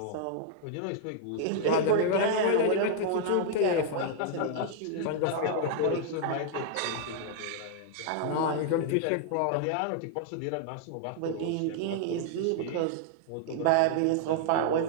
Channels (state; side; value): different; both; correlation -0.01